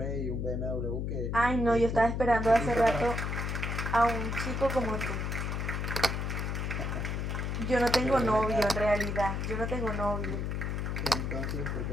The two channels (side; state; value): left; noise; hum, 2 dB below the sound